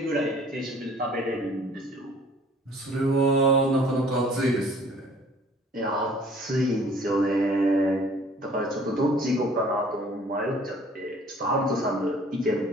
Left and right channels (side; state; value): both; normal; correlation 0.53